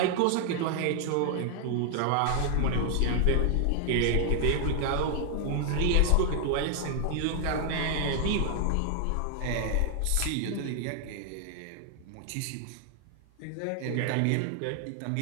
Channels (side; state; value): both; different; correlation 0.00